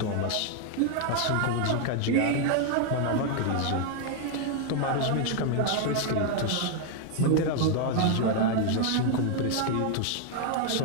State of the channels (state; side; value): different; both; correlation 0.00